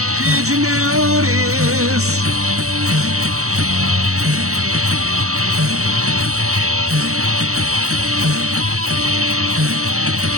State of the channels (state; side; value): late; left; 0.65 ms